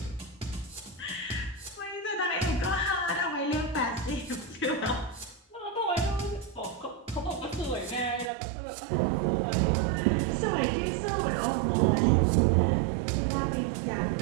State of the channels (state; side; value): drops out; left; at 8.3 s